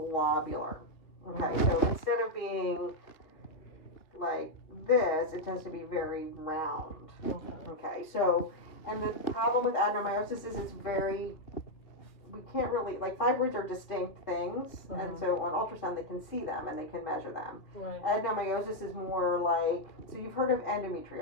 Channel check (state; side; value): late; right; 2.7 ms